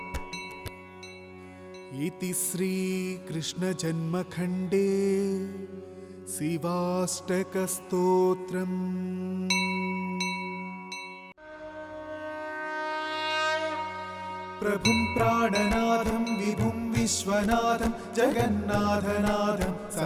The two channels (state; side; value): identical; both; correlation 1.00